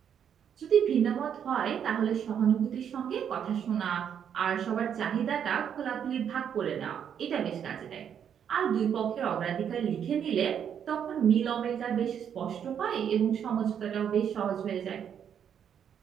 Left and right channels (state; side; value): quieter; left; 8.4 dB